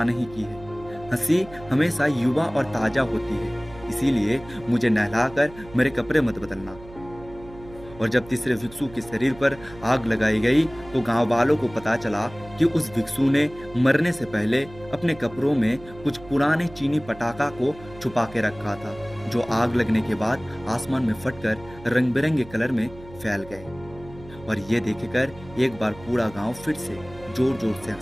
नहीं की है। हंसी हमेशा युवा और ताजा होती है, इसीलिए मुझे नहलाकर मेरे कपड़े मत बदलना। और जब तीसरे भिक्षु के शरीर पर आग लगाई गई तो गांव वालों को पता चला कि उस भिक्षु ने मरने से पहले अपने कपड़ों में कुछ पुराने चीनी पटाखा को छुपा के रखा था, जो आग लगने के बाद आसमान में फटकर रंग बिरंगे कलर में फैल गए। और ये देखकर एक बार पूरा गांव फिर से जोर जोर से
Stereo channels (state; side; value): noise; right; hum, 19 dB below the sound